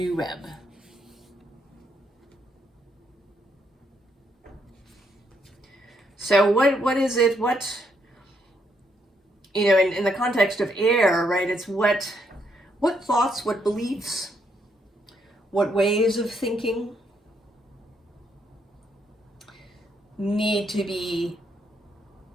web. So what is it, in the context of air, right, it's what thoughts, what beliefs, what ways of thinking need to be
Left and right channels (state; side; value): normal; both; correlation 0.75